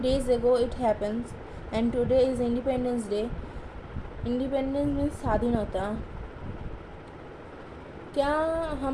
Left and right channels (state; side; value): identical; both; correlation 1.00